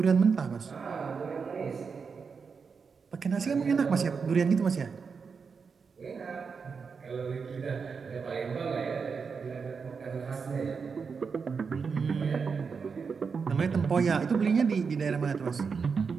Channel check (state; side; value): quieter; left; 5.5 dB